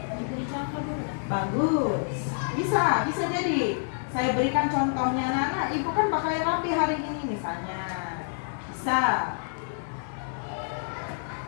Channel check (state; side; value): silent; right; digital silence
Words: Bagus, bisa jadi. Saya berikan contohnya, anak-anak, Ibu kan pakai rapi hari ini misalnya, bisa.